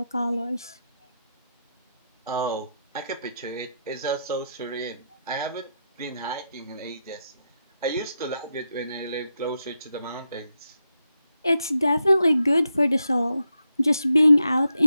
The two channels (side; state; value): both; inverted; correlation -0.85